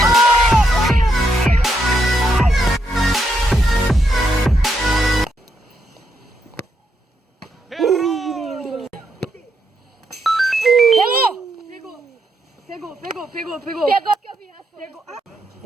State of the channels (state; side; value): normal; both; correlation 0.78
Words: Pegou. Pegou que eu vi. Pegou.